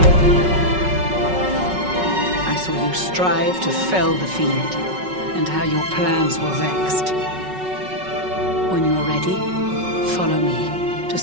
I saw you strive to fell the fiend, and how your plans were vexed. When you're ready, follow me to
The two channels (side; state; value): left; late; 5.4 ms